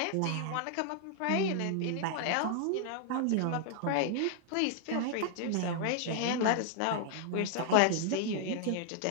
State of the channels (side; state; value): both; different; correlation -0.01